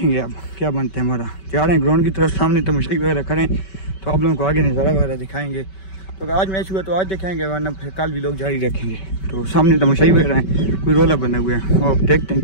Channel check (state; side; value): late; right; 5.2 ms